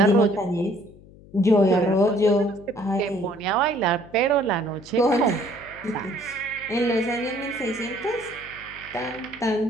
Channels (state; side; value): noise; left; hum, 22 dB below the sound